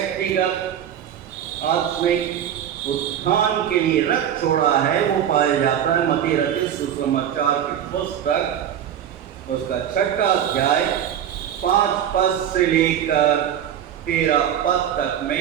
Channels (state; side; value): quieter; left; 9.8 dB